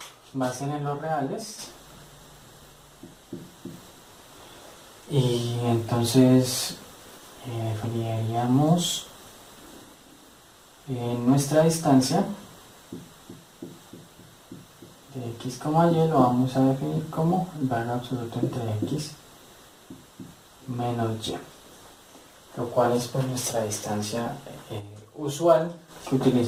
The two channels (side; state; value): both; identical; correlation 1.00